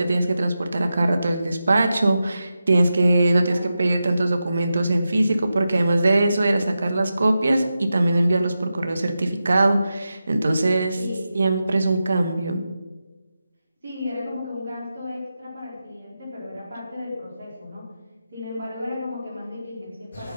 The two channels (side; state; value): both; inverted; correlation -0.91